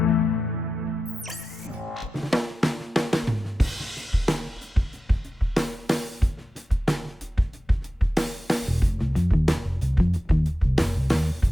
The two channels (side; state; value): both; normal; correlation 0.93